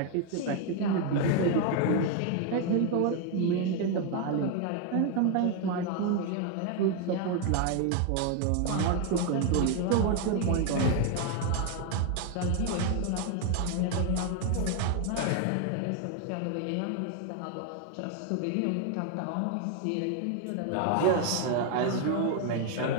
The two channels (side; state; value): both; different; correlation 0.01